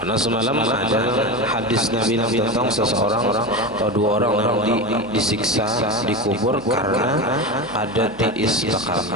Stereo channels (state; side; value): noise; right; hum, 21 dB below the sound